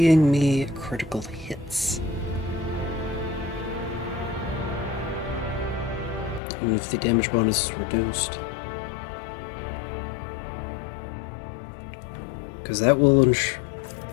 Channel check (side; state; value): right; drops out; at 6.4 s